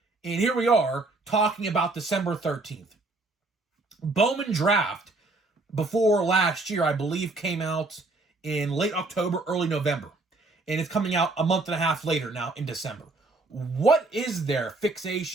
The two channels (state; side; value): quieter; left; 3.2 dB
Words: And here we are talking about December 13th. Bowman Draft, before last year, I believe, came out in late October, early November. And it's coming out a month and a half later now in December. What is their